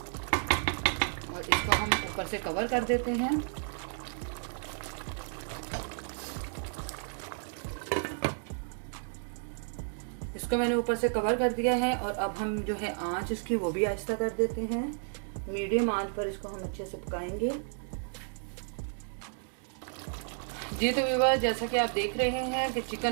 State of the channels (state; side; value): silent; left; 56 dB below the other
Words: और इसको हम ऊपर से कवर कर देते हैं। इसको मैंने ऊपर से कवर कर दिया है और अब हम जो है आंच इसकी वो भी आहिस्ता कर देते हैं। मीडियम आंच पर इसको हम अच्छे से पकाएंगे। जी तो व्यूअर्स, जैसा कि आप देख रहे हैं कि